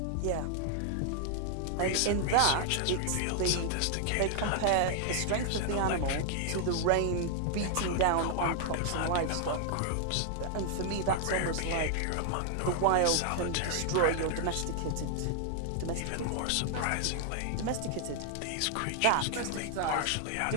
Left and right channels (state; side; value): different; both; correlation 0.00